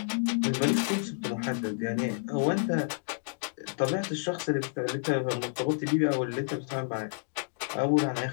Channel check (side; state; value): right; silent; digital silence